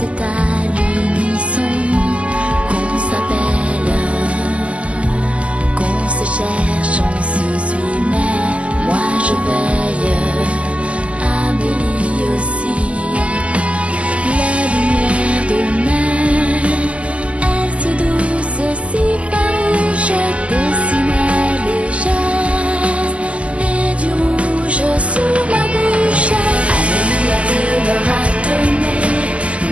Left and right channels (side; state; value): left; late; 0.060 ms